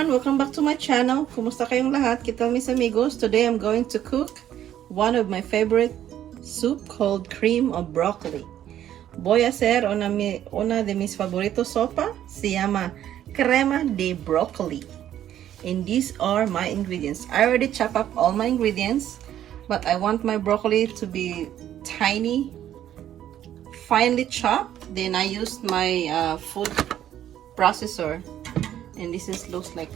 everyone! Welcome back to my channel. Kumusta kayong lahat? Kita mis amigos. Today I'm going to cook one of my favorite soup called cream of broccoli. Voy a hacer una de mis favoritos sopa. Se llama crema de broccoli. And these are my ingredients. I already chopped up all my ingredients, but I want my broccoli to be tiny, finely chopped. Then I used my food processor. And looks like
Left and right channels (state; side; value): quieter; left; 11.3 dB